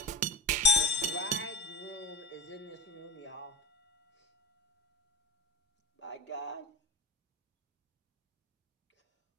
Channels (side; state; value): both; normal; correlation 0.26